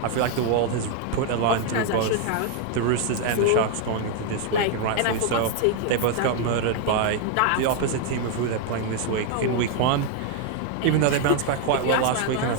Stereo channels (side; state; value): both; different; correlation 0.00